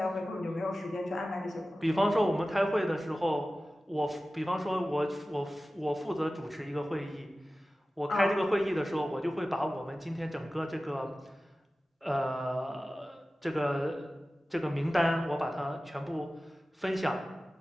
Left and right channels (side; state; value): both; normal; correlation 0.96